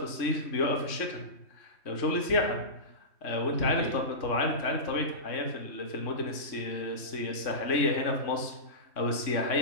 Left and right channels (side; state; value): right; late; 3.6 ms